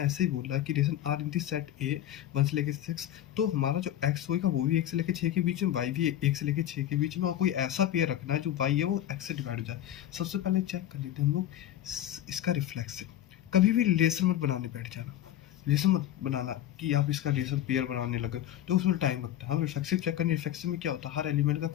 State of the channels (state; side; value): quieter; right; 11.9 dB